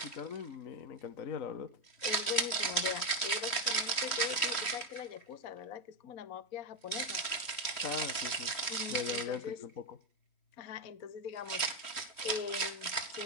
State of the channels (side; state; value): right; late; 3.1 ms